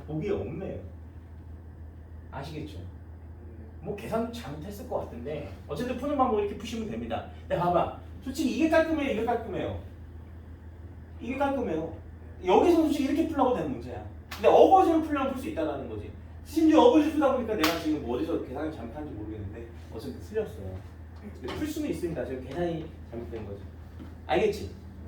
보기에 없네요. 아시겠죠? 뭐 계산 잘못했을 것 같은데 어쨌든 푸는 방법 이렇게 푸시면 됩니다. 근데 봐봐, 솔직히 이게 깔끔해요, 이게 깔끔해요. 이게 깔끔해요. 여기서 솔직히 이렇게 풀려고 되는 문제야. 근데 어거지로 풀려면 풀 수 있다는 거지. 심지어 어거지 풀다 보니까 내가 지금 뭐 어디서 계산을 잘못한지 모르겠는데 어쨌든 틀렸어요. 근데 풀 수는 있습니다. 지금 계산이 잘못된 거지. 알겠지?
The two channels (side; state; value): both; identical; correlation 1.00